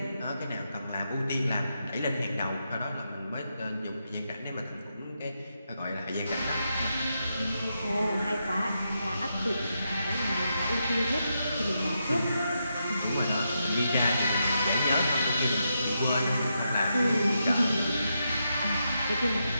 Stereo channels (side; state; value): both; inverted; correlation -0.84